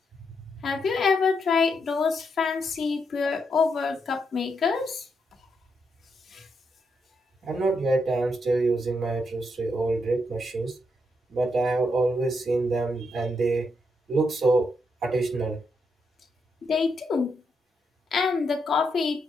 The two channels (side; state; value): both; normal; correlation 0.80